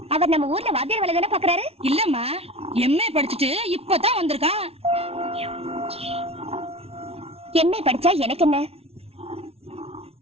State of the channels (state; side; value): late; left; 0.29 ms